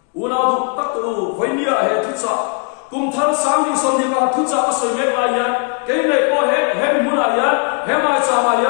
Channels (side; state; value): right; quieter; 35.8 dB